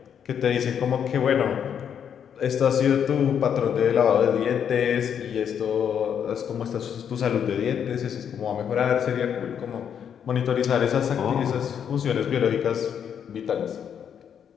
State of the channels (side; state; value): right; quieter; 8.2 dB